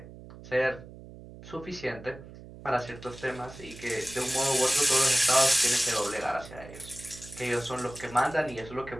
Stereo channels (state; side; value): noise; right; hum, 16 dB below the sound